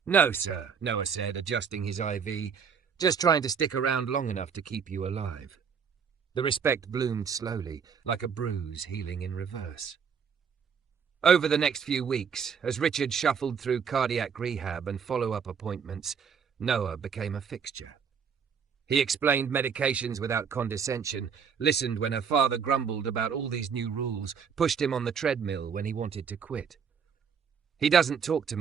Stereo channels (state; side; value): quieter; left; 6.7 dB